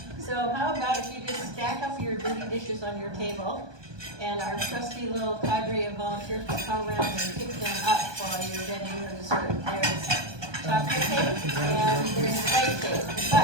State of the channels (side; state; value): left; late; 1.2 ms